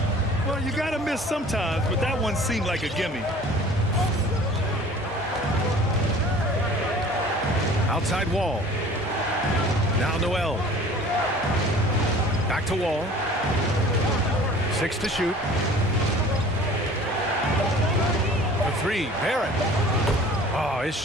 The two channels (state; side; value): normal; both; correlation 0.46